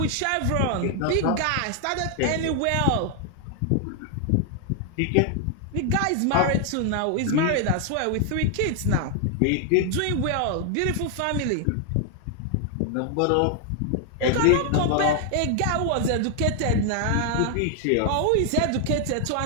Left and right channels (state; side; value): different; both; correlation 0.00